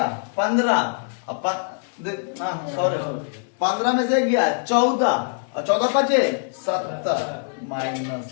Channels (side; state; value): right; silent; 61 dB below the other